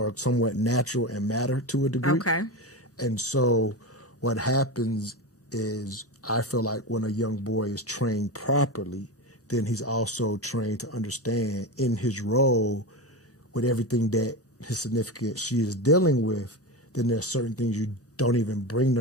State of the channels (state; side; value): normal; both; correlation 0.20